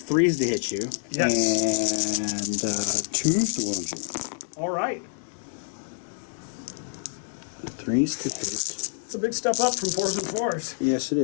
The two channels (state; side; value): silent; right; digital silence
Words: to hit you. Yes. And 2s to wound you. All right. 3s to hit. It's a big step up from 4s and 4s. Yes, it